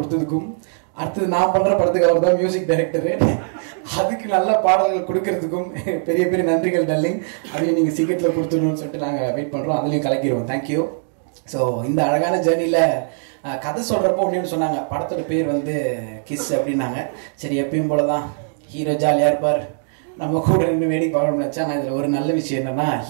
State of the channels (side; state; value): left; silent; digital silence